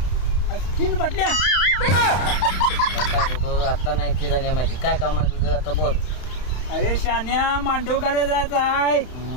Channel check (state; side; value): late; right; 31 ms